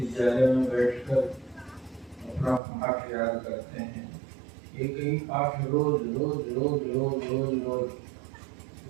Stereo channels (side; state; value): left; drops out; at 2.6 s